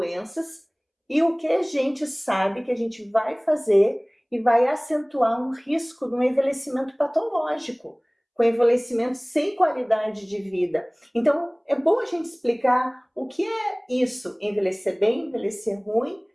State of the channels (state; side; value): identical; both; correlation 1.00